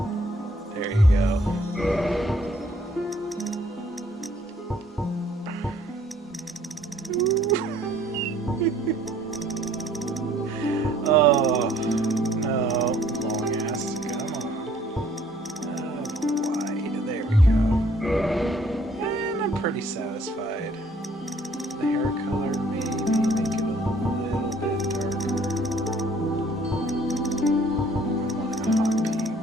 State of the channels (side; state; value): both; normal; correlation 0.60